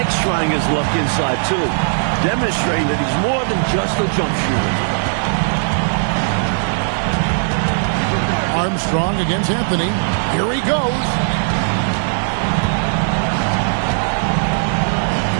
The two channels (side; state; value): left; silent; digital silence